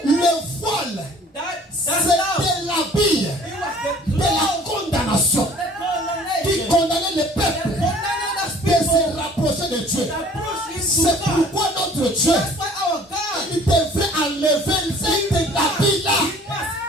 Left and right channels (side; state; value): both; normal; correlation 0.52